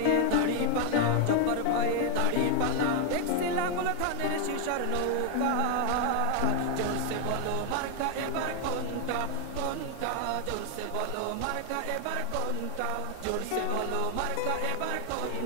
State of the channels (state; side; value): different; both; correlation 0.01